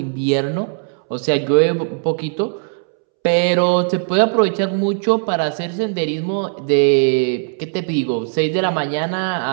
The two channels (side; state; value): left; silent; 67 dB below the other